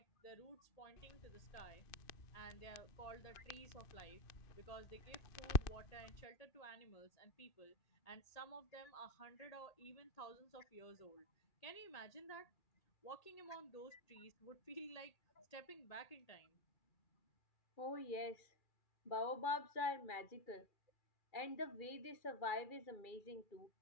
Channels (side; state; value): right; late; 2.4 ms